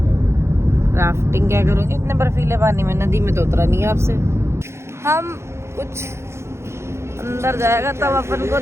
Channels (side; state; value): left; late; 0.13 ms